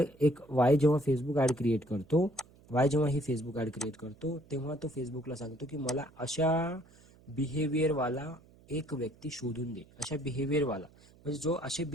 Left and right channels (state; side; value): noise; right; hum, 26 dB below the sound